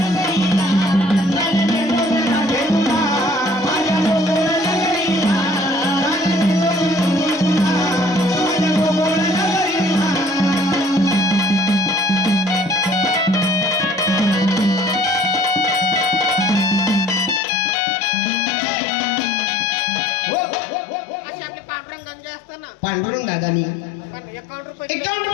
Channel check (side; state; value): right; drops out; at 17.4 s